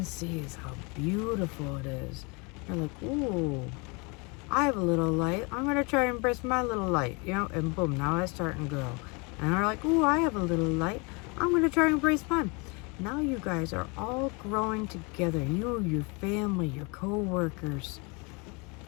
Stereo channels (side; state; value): right; quieter; 29.9 dB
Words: sees how beautiful it is. They're like, ooh, I have a little light. I'm going to try to embrace my little light, you know? And boom, now it's starting to grow. And they're like, ooh, I have a little light. I'm going to try to embrace mine. Now you guys are all growing together. You, your family, your co-workers.